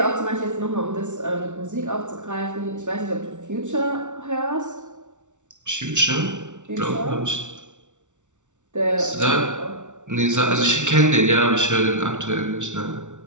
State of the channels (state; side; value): late; left; 0.85 ms